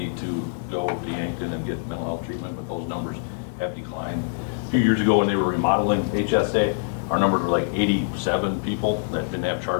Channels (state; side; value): silent; right; digital silence